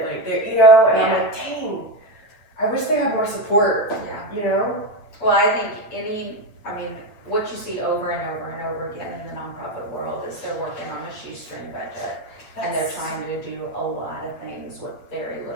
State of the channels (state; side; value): late; right; 9.4 ms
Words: Like, they, you know, and I'm like, dang, I wish they had more support. Yeah. You know? Well, I think what you see over and over and over again in the nonprofit world is they're working on a shoestring budget, and they're trying to do a lot of things with very